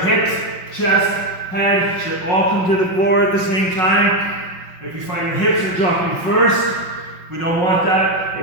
chest, head should all come to the floor at the same time. If you find your hips are dropping first, we don't want that.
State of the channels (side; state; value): right; late; 5.5 ms